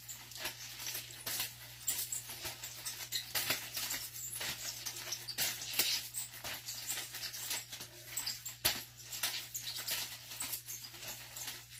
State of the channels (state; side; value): identical; both; correlation 1.00